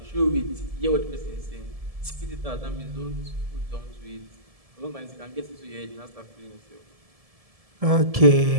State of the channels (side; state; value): left; late; 1.7 ms